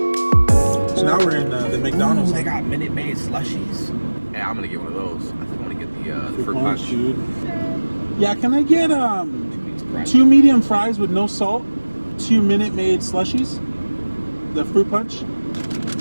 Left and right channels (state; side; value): inverted; both; correlation -1.00